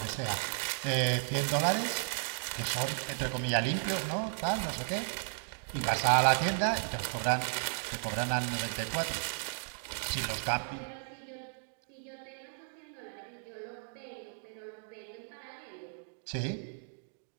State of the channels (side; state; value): left; silent; digital silence